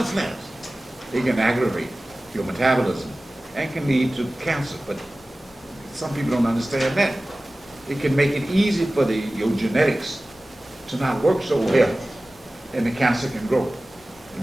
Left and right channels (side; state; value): both; normal; correlation 0.97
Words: plants, it can aggravate your metabolism and can lead to cancer. But some people don't understand that. It can make it easy for your genetics to not work so well, and the cancer can grow.